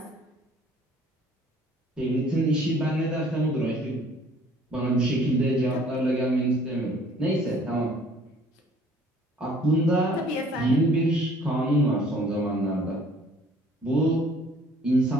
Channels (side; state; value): both; normal; correlation 0.56